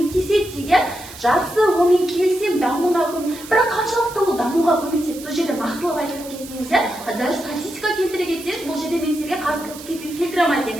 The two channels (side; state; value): right; noise; hiss, 15 dB below the sound